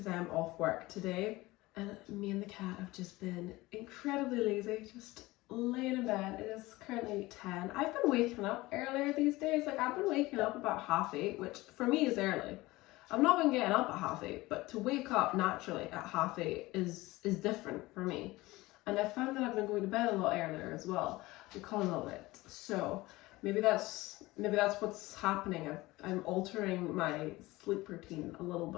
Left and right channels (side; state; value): right; quieter; 19.9 dB